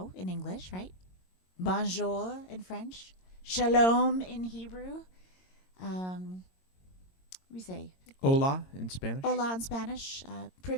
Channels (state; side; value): late; right; 22 ms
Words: in English, right? Bonjour in French. Shalom in Hebrew. We say Hola in Spanish. hola in Spanish.